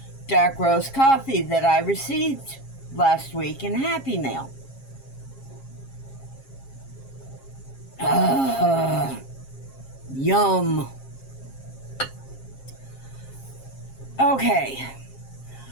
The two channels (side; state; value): right; late; 7.4 ms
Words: dark roast coffee that I received last week in Happy Mail. Yum. Okay.